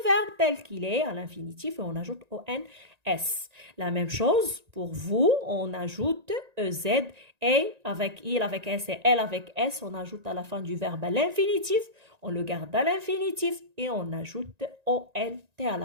verbe tel qu'il est à l'infinitif et on ajoute ONS. La même chose pour vous, on ajoute EZ et avec il, avec S et elle avec S, on ajoute à la fin du verbe à l'infinitif, on le garde à l'infinitif et on ajoute ONT à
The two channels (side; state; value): left; late; 1.9 ms